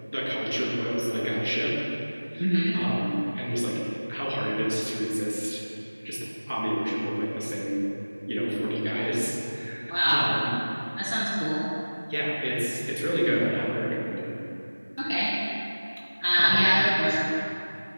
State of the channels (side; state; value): both; inverted; correlation -1.00